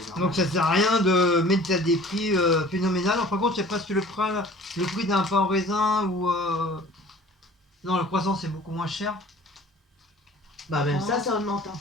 normal. Donc ça sert à rien de mettre à des prix phénoménales. Par contre, il y a presque le prix d'un pain au raisin ou non, le croissant c'est beaucoup moins cher. Bah même ça augmente. Hein.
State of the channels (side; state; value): both; normal; correlation 0.47